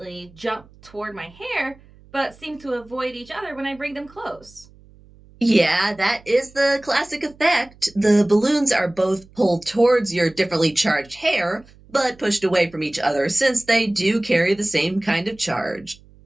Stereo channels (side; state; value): right; noise; hum, 26 dB below the sound